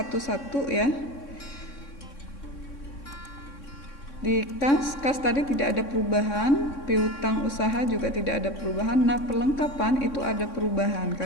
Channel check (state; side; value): late; right; 3.6 ms